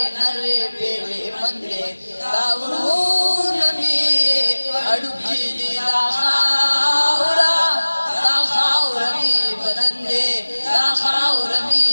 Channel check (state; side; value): inverted; both; correlation -1.00